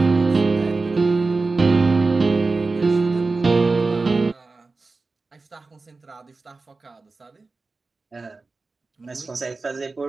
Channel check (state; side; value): quieter; left; 3.8 dB